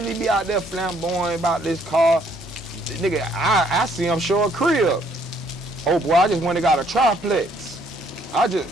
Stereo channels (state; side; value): normal; both; correlation 0.66